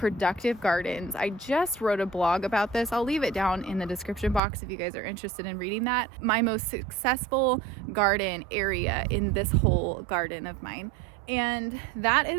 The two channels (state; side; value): drops out; left; at 4.4 s